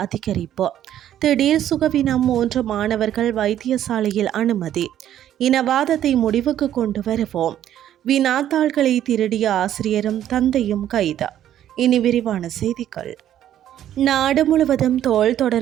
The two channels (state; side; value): quieter; left; 11.3 dB